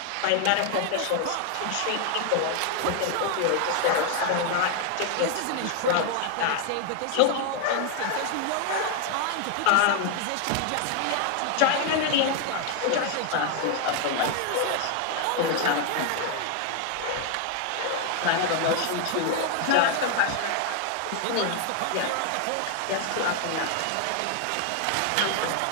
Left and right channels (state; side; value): different; both; correlation 0.00